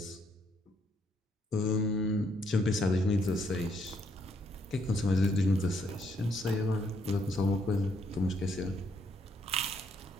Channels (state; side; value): normal; both; correlation 0.72